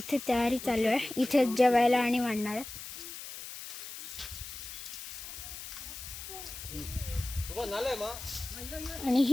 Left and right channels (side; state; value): left; noise; hiss, 10 dB below the sound